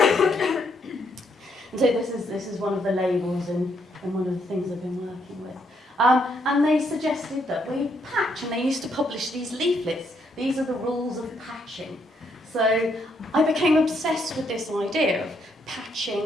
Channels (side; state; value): both; normal; correlation 0.74